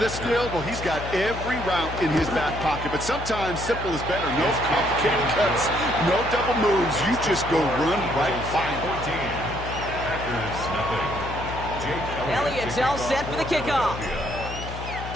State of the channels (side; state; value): left; noise; hum, 9 dB below the sound